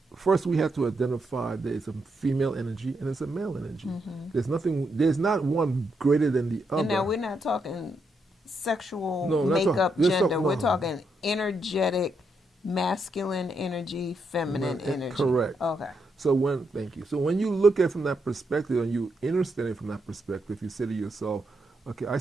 First, we have to identify there's a female energy and there's a male energy. There's not one greater than the other. And now we're not talking sexual No, we're not makeup, talking- gender. no. We're talking energetic, masculine energy, feminine energy. Correct. Okay. So thank you. So when you look at it from that perspective and you understand it from that perspective, you say to yourself, okay, I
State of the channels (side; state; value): both; normal; correlation 0.80